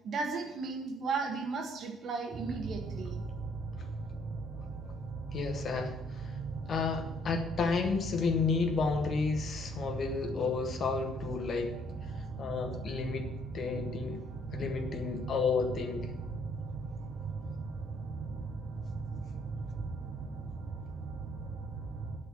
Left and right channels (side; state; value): both; normal; correlation 0.65